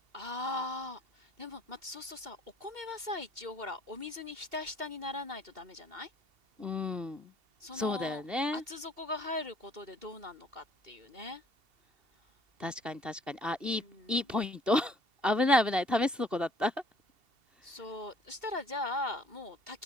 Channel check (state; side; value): late; left; 2.7 ms